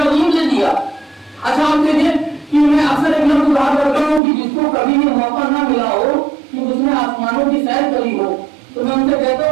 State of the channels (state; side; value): drops out; left; at 4.2 s